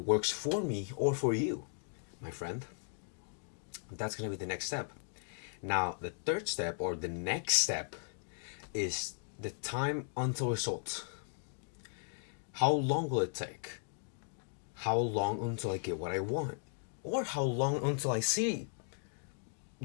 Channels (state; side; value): silent; right; digital silence